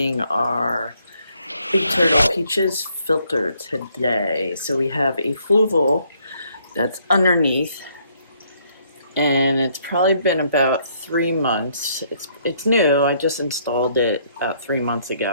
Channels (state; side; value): inverted; both; correlation -0.68